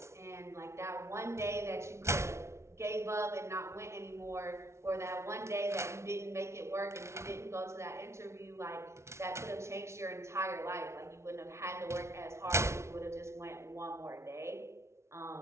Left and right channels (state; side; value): late; left; 0.13 ms